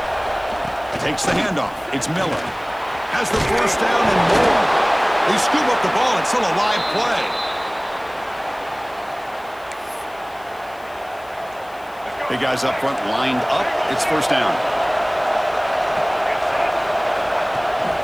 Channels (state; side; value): noise; left; hiss, 26 dB below the sound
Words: Takes the handoff. It's Miller. Has the first down and more. They scoop up the ball. It's still a live play. Big guys up front lined up. It's 1st down.